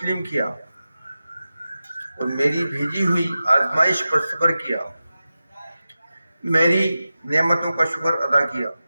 کیا اور میری بھیجی ہوئی آزمائش پر صبر کیا، میری نعمتوں کا شکر ادا کیا،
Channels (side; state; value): both; inverted; correlation -0.93